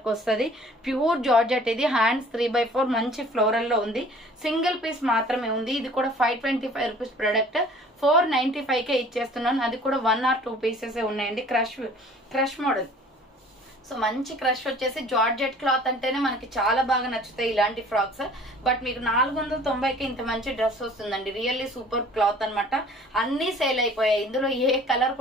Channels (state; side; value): normal; both; correlation 0.50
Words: వస్తుంది. ప్యూర్ జార్జెట్ ఇది. హ్యాండ్స్ 3/4 మంచి ఫ్లోరల్ లో ఉంది. సింగిల్ పీస్ మాత్రమే ఉంది. ఇది కూడా 525 రూపీస్ ప్రొడక్ట్. 495 కే ఇచ్చేస్తున్నాను. అది కూడా 1 or 2 పీసెస్ ఉన్నాయండి. Crush model. సో మంచి క్రష్ వచ్చేసి జార్జెట్ క్లాత్ అంటేనే మనకి చాలా బాగా నచ్చుతాయి ఇలాంటి ఫ్రాక్స్. బట్ మీకు 490కి ఇంత మంచి డ్రెస్ వస్తుందండి. రియల్లీ సూపర్ క్లాత్ అనమాట. అన్ని సేల్ అయిపోయాయి. ఇందులో ఏ కలర్